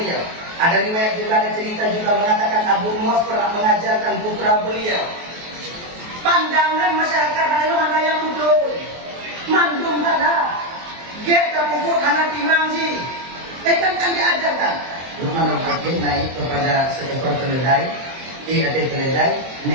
Ada riwayat juga, ada cerita juga mengatakan Abu Muas pernah mengajarkan putra beliau. Pandangan masyarakat lalu mana yang betul. Mandung salah. Get tak pupuk anak timang sih. Kan diajarkan. Luqmanul Hakim naik kepada seekor keledai. Ada keledai.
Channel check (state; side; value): late; left; 23 ms